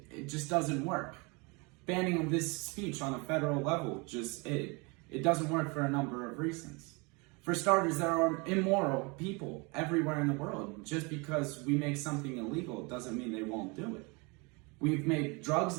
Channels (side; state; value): left; quieter; 29.0 dB